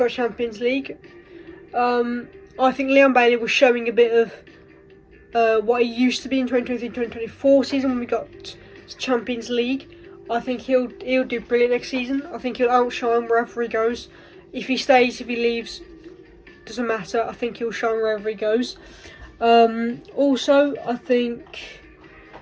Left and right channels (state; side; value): identical; both; correlation 1.00